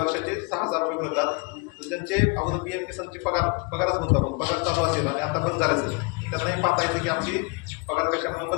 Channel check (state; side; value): quieter; right; 29.9 dB